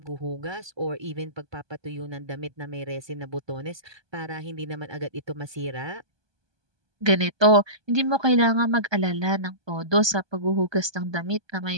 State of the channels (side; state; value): left; late; 1.2 ms